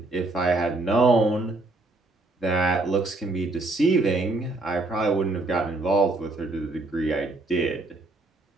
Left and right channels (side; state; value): left; quieter; 3.1 dB